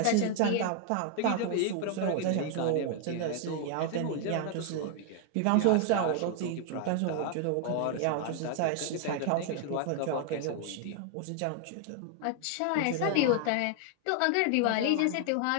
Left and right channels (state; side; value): different; both; correlation 0.00